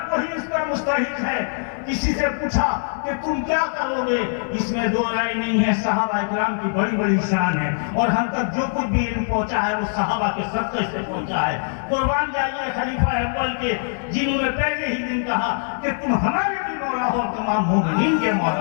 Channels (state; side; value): silent; right; digital silence